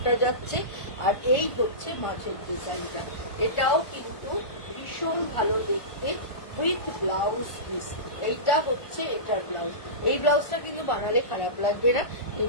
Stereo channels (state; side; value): late; right; 1.4 ms